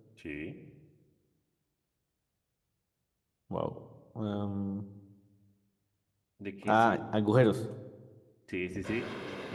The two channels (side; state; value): both; identical; correlation 1.00